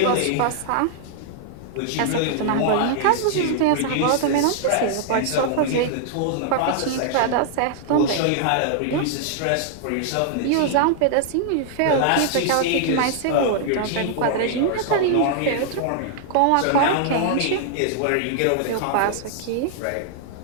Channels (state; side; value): different; both; correlation -0.01